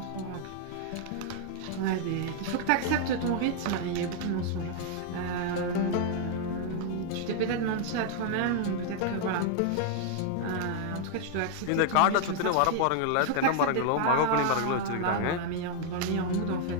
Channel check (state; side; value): different; both; correlation 0.00